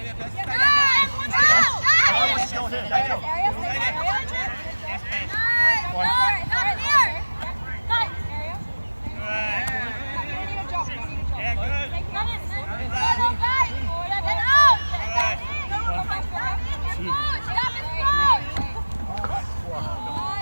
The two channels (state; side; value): inverted; both; correlation -1.00